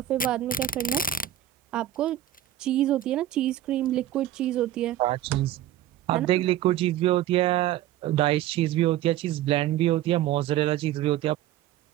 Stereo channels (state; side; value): quieter; left; 12.5 dB